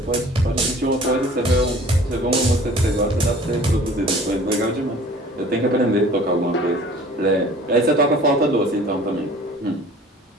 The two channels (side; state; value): both; normal; correlation 0.48